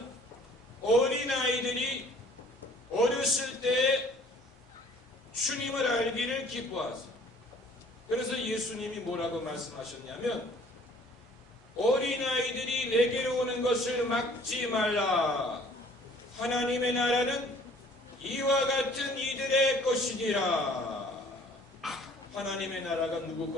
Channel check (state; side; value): normal; both; correlation 0.54